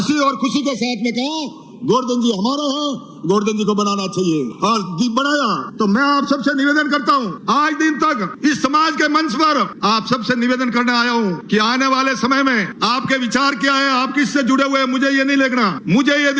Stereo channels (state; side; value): identical; both; correlation 1.00